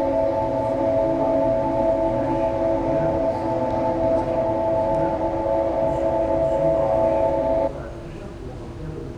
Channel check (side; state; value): both; identical; correlation 1.00